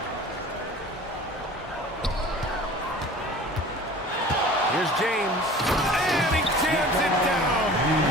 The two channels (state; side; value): normal; both; correlation 0.43